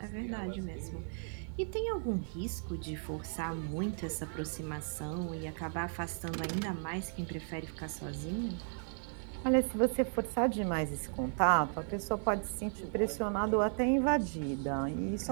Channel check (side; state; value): left; silent; 54 dB below the other